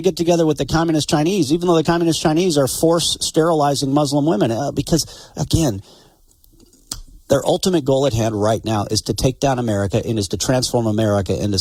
get together with the communist Chinese, even though the communist Chinese are force sterilizing Muslim women? Because, again, their ultimate goal at hand right now is to take down America and is to transform America into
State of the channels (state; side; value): identical; both; correlation 1.00